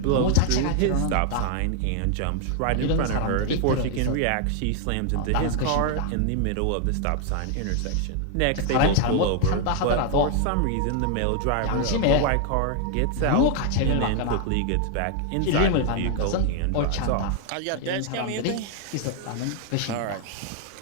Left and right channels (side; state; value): both; different; correlation 0.00